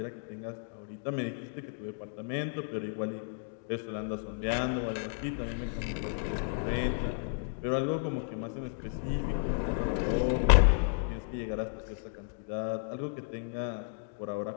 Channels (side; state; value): right; silent; digital silence